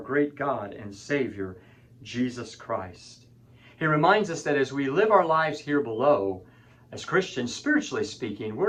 God and Savior, Jesus Christ. He reminds us that as we live our lives here below, as Christians, spiritually speaking, we're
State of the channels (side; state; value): both; identical; correlation 1.00